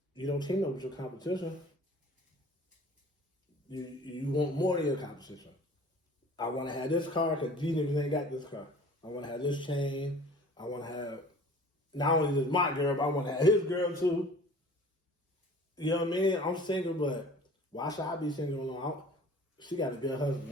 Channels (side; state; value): both; normal; correlation 0.46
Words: You don't team up with your competition. You want more of your competition. I want to have this car because these niggas ain't got this car. I want to have this chain. I want to have, not only just my girl, but I want to have his girl too. You know what I mean? I'm single, but why should I be single alone? She got a good